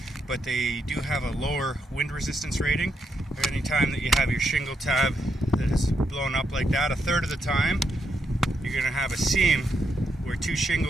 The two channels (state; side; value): normal; both; correlation 0.80